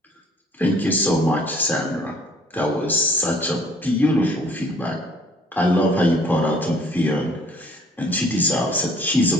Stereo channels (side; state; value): both; normal; correlation 0.56